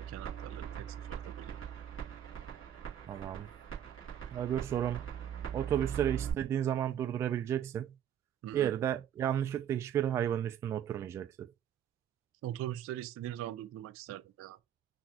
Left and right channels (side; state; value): left; quieter; 10.0 dB